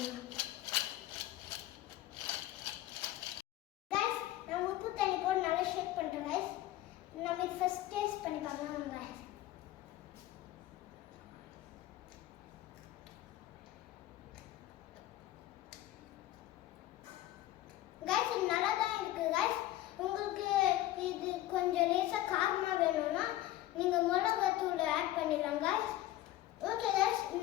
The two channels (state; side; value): quieter; right; 14.9 dB